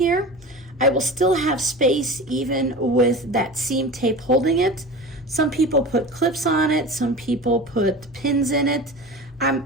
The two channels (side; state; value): both; normal; correlation 0.33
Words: I will still have space even with that seam tape holding it. Some people put clips on it, some people put pins in it.